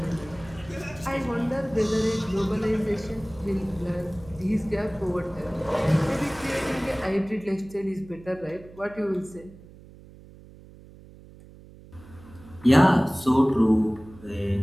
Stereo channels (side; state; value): right; noise; hum, 20 dB below the sound